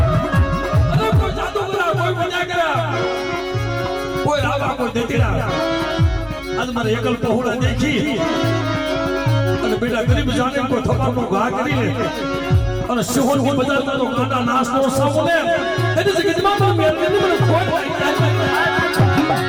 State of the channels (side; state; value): both; identical; correlation 1.00